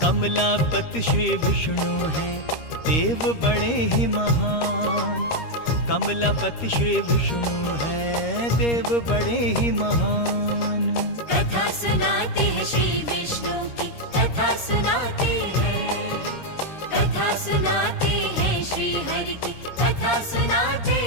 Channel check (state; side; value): late; right; 13 ms